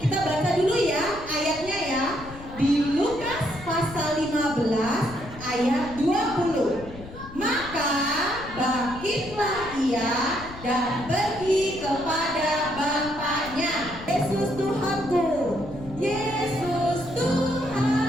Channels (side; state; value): left; noise; rumble, 15 dB below the sound